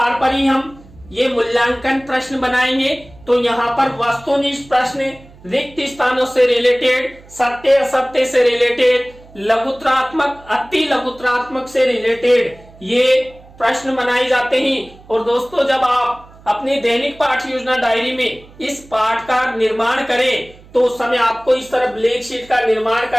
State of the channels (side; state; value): right; noise; hum, 23 dB below the sound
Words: पर ही हम ये मूल्यांकन प्रश्न बनाएंगे। तो यहाँ पर वस्तुनिष्ठ प्रश्न रिक्त स्थानों से रिलेटेड, सत्य असत्य से रिलेटेड, लघुत्रात्मक अति लघुत्रात्मक से रिलेटेड ये प्रश्न बनाए जाते हैं। और दोस्तों जब आप अपनी दैनिक पाठ योजना डायरी में इस पाठ का निर्माण करें तो उस समय आपको इस तरह ब्लैक शीट का निर्माण